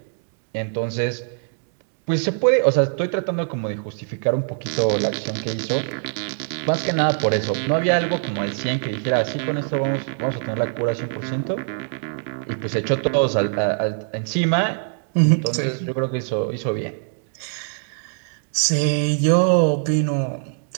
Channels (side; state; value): left; silent; digital silence